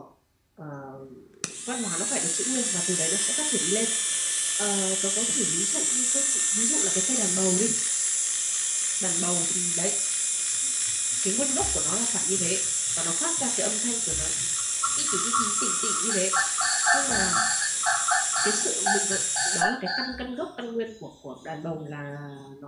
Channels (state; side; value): identical; both; correlation 1.00